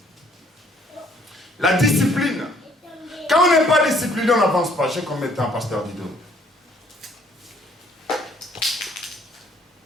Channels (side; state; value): both; normal; correlation 0.62